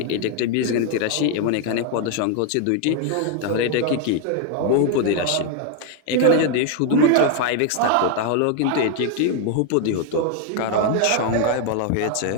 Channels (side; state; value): both; different; correlation 0.01